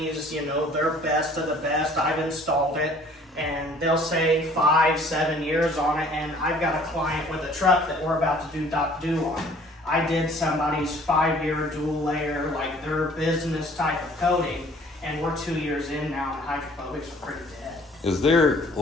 they're best of the best. I've installed it, and they'll say 5-7 years on it, and I've got a client with a truck that we're about to do Doc Do on. I did somebody's 5-year dual layer, their business type of coating, and we're 2 years in now, and hydrophobics are pretty dead. Is there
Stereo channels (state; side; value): normal; both; correlation 0.54